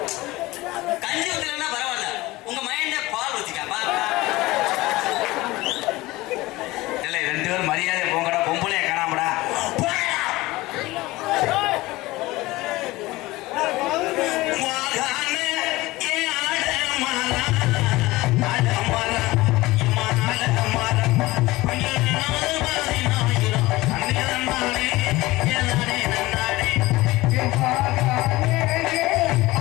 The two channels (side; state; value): right; quieter; 19.7 dB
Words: கஞ்சி ஊத்தலன்னா பரவாயில்ல, உங்க மைண்ட பால் ஊத்திக்கா. இல்லை 2 பேரும் மரியாதை போங்கடா. பொம்பளைய காணாமடா.